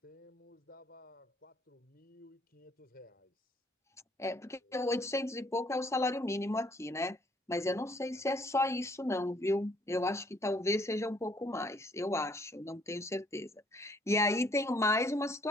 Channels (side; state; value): both; normal; correlation 0.64